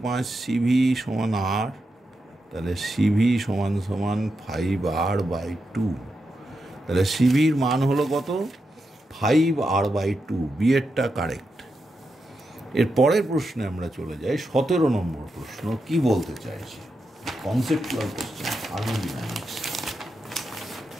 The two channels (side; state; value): both; normal; correlation 0.86